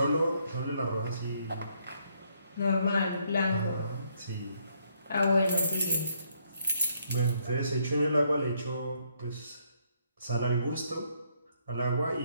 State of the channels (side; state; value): both; inverted; correlation -0.71